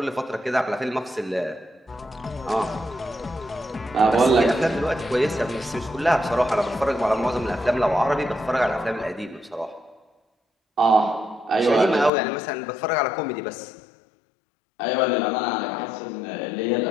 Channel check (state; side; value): drops out; right; at 12.1 s